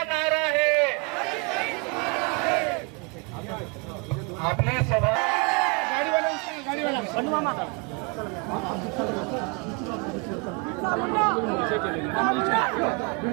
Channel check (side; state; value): left; quieter; 31.6 dB